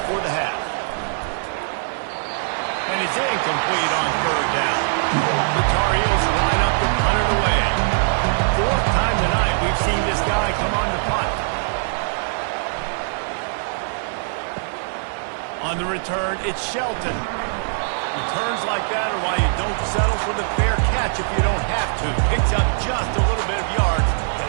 the half. And it's incomplete on 3rd down. The Tar Heels line up to punt it away. 4th time tonight we've seen this guy come on to punt. On the return, it's Shelton. Returns like that are why you don't settle for the fair catch if you don't have to. Picks up just a little bit of yards to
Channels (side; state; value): left; silent; digital silence